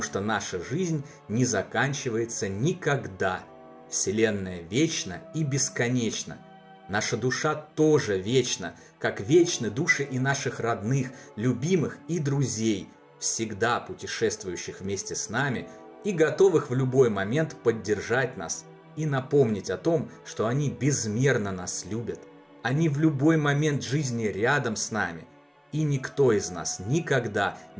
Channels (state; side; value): identical; both; correlation 1.00